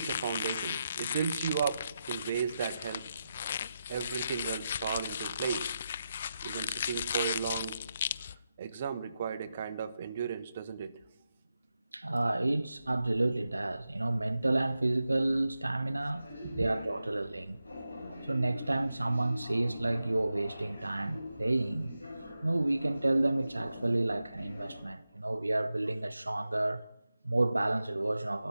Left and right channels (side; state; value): both; inverted; correlation -0.89